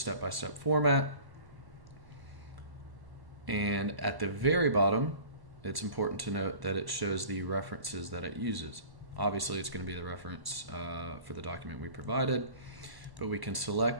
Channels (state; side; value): late; left; 1.0 ms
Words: format. And at the very bottom, it's important to note that it shows the references that it uses. Obviously, it's going to be the reference for the document we provided, but we can